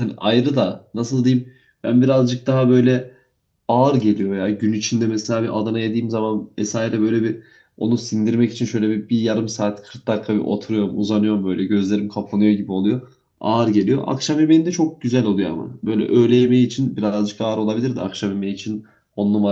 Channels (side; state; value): both; identical; correlation 1.00